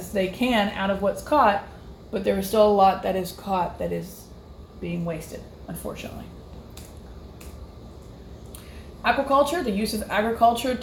they can out of what's caught, but there is still a lot that is caught that is being wasted, unfortunately. Aquaculture, the use of agriculture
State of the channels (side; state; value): both; identical; correlation 1.00